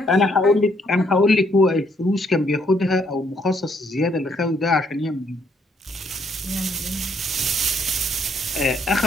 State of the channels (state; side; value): normal; both; correlation 0.70